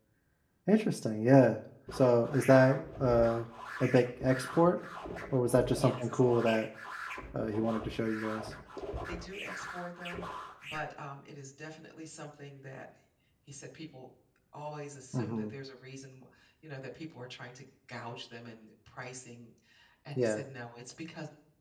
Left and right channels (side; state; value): both; identical; correlation 1.00